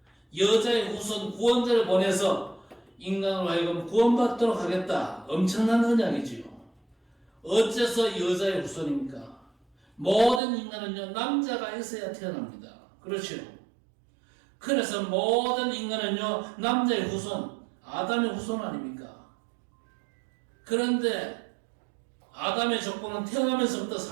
여자의 후손 구원자를 보내서 인간으로 하여금 구원받도록 하겠다. 엄청난 언약이지요. 어째서 여자의 후손입니까? 모든 인간은요, 남자가 있어야 태어납니다. 그렇죠? 그래서 모든 인간은요, 남자의 후손, 아담의 후손 아닙니까? 그런데 아담의 족보는 태어나면서부터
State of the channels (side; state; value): left; drops out; at 10.4 s